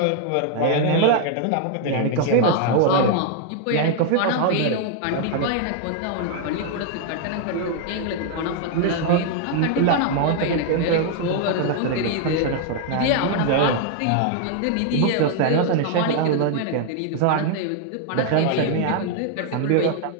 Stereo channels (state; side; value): different; both; correlation 0.00